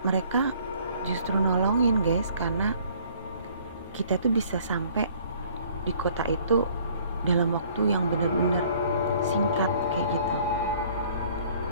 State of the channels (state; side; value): inverted; both; correlation -0.57